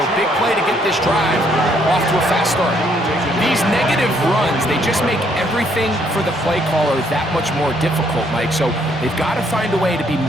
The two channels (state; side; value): normal; both; correlation 0.68